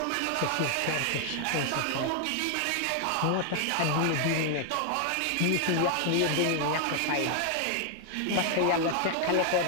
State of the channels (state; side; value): different; both; correlation 0.00